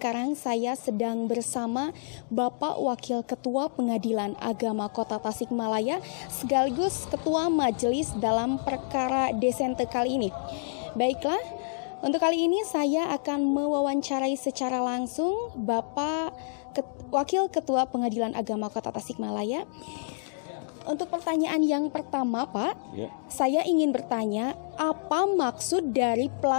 saya sedang bersama Bapak Wakil Ketua Pengadilan Agama Kota Tasikmalaya sekaligus Ketua Majelis dalam perkara Desente kali ini. Baiklah, untuk kali ini saya akan mewawancarai secara langsung Bapak Wakil Ketua Pengadilan Agama Kota Tasikmalaya. Untuk pertanyaan yang pertama, Pak, saya ingin bertanya, apa maksud dari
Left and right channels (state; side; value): silent; right; digital silence